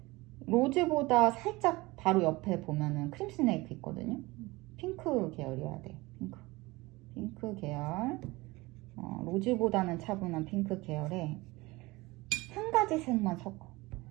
로즈보다 살짝 바로 옆에 보면은 크림 스네이크 있거든요. 핑크 계열이어야 돼. 핑크 계열. 로즈보다는 차분한 핑크 계열에 한 가지 색만 섞어.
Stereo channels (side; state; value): left; quieter; 21.8 dB